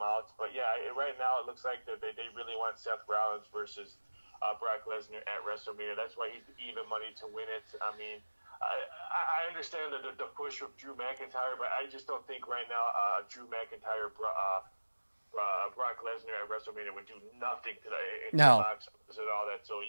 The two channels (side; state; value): both; inverted; correlation -1.00